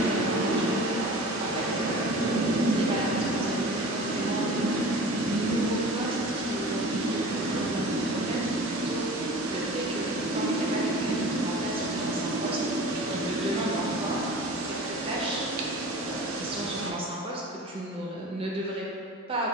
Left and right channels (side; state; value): both; normal; correlation 0.39